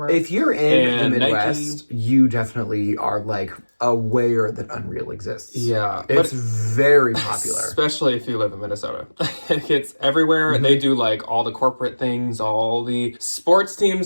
If you're in the Midwest, you definitely are aware that Unreal exists. Yeah. It's very popular. Especially if you live in Minnesota. It's everywhere. They do all the corporate things, all the sports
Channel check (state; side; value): inverted; both; correlation -1.00